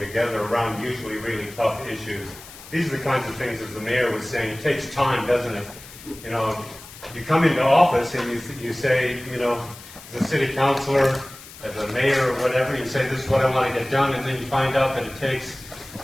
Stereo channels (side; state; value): left; noise; hiss, 17 dB below the sound